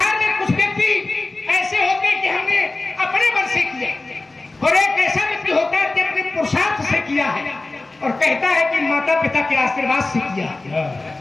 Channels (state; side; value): quieter; right; 3.1 dB